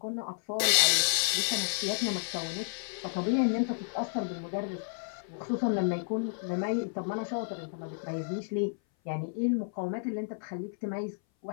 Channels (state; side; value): silent; right; 57 dB below the other